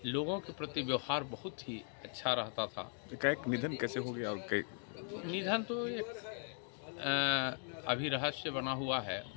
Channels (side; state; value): right; silent; 52 dB below the other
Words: लोगों के प्रति व्यवहार बहुत ही अच्छा रहता था। एक निधन कैसे हो गया और निधन तो एक अभी रहस्य बना हुआ है।